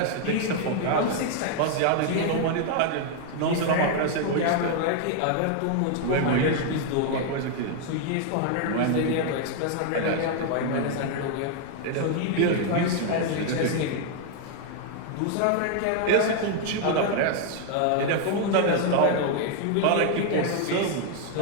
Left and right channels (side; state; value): both; different; correlation 0.00